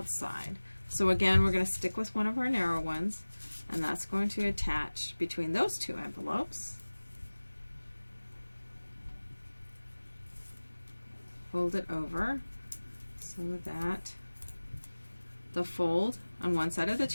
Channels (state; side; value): inverted; both; correlation -1.00